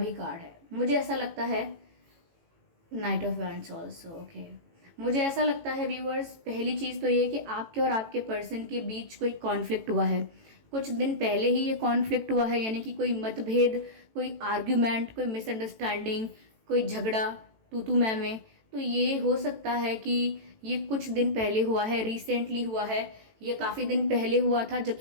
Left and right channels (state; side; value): late; left; 18 ms